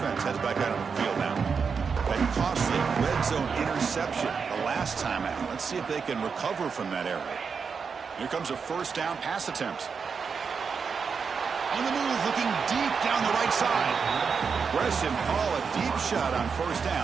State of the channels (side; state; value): left; quieter; 5.7 dB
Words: heads back out on the field now. That costly red zone interception the last time out. Let's see if they can recover from that error. Here comes a first down pass attempt. On the move, looking deep down the right side. Aggressive call, a deep shot on first